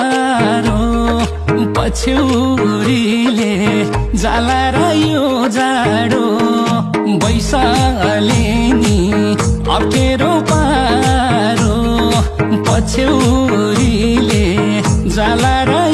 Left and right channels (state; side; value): identical; both; correlation 1.00